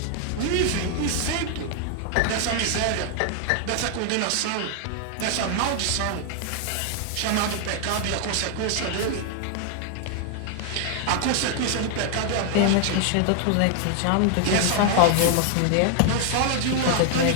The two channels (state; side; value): different; both; correlation 0.00